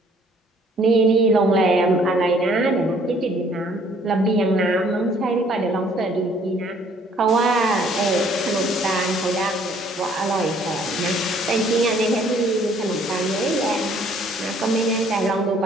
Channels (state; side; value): normal; both; correlation 0.60